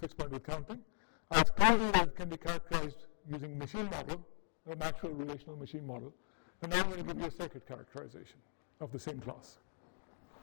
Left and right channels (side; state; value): right; silent; digital silence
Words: point with counting. I've told you that it can be characterized using machine model, a natural relational machine model. And now I'm going to give you a circuit characterization of the same class.